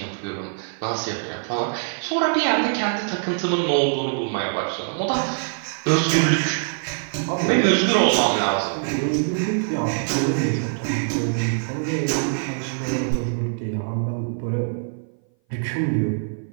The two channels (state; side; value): silent; left; 58 dB below the other